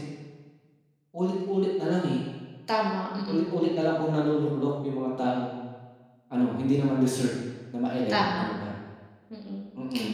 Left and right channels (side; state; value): both; identical; correlation 1.00